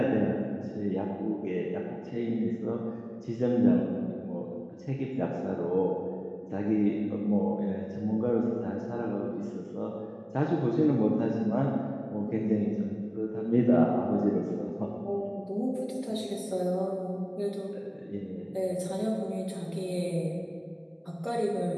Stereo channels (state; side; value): identical; both; correlation 1.00